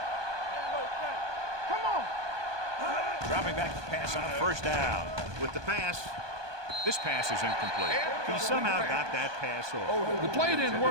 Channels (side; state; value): left; late; 1.2 ms